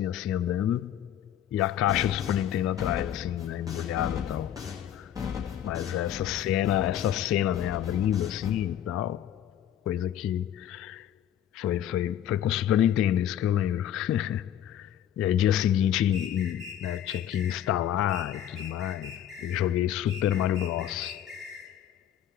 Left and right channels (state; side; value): quieter; right; 10.8 dB